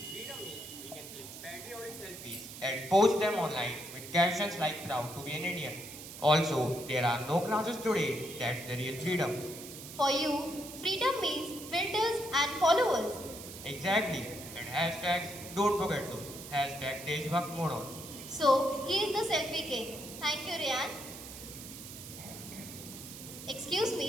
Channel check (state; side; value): noise; right; hiss, 12 dB below the sound